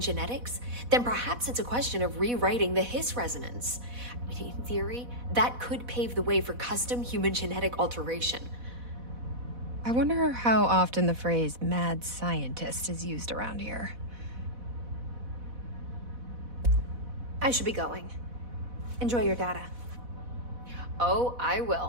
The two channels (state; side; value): late; left; 4.1 ms